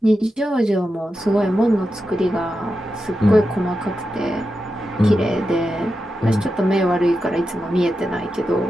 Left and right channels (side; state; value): both; normal; correlation 0.89